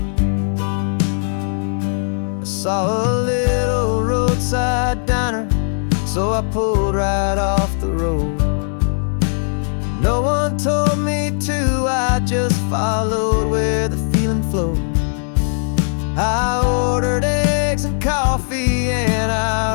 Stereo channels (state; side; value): silent; right; digital silence